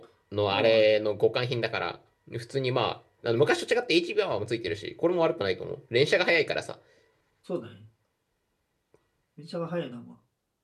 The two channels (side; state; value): both; identical; correlation 1.00